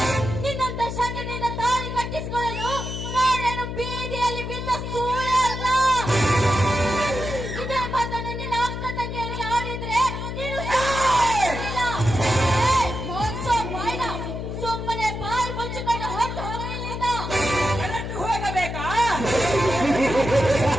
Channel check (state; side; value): noise; left; hum, 5 dB below the sound